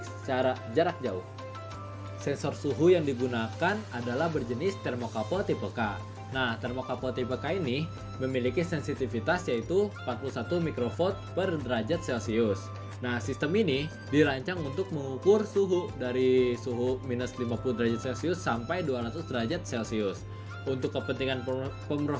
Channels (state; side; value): identical; both; correlation 1.00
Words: secara jarak jauh. Sensor suhu yang digunakan adalah berjenis termokapel tipe K. Nah, termokapel tipe K ini memiliki sensitivitas yaitu 41 mikrovolt per derajat Celcius. Nah, sistem ini dirancang untuk mengukur suhu dari suhu minus 50 derajat Celcius sampai 200 derajat Celcius. Untuk kepentingan